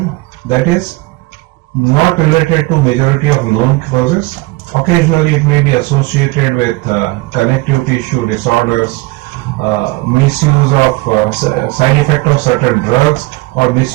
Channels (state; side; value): quieter; left; 21.8 dB